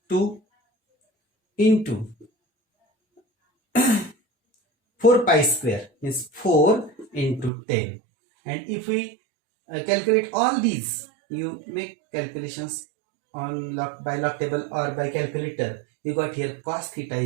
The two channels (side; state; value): left; drops out; at 7.5 s